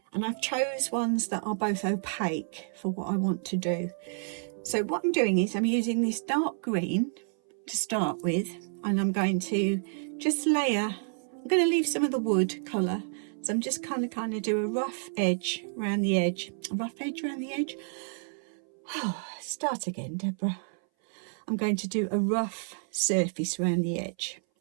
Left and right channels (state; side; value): silent; left; 58 dB below the other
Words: And I've chose ones that are both opaque for what I want to do. So what I'm doing is I'm using this dark green to start with, and I'm going to just layer. I'm going to leave some of the wood colour, so I'm just kind of do a rough edge around the edge. A rough edge around the edge. Oh, start again, Deborah. I'm going to do a rough surface around the edge,